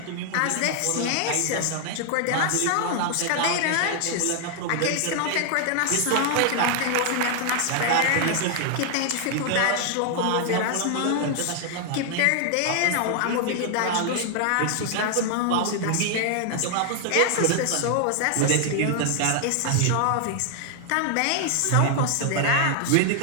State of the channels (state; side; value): different; both; correlation 0.00